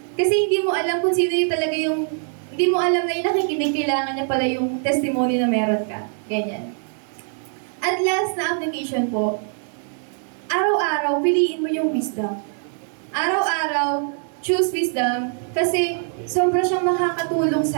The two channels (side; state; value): left; silent; 57 dB below the other